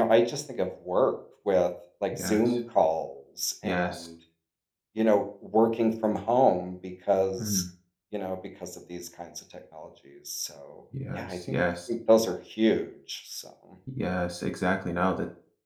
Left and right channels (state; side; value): identical; both; correlation 1.00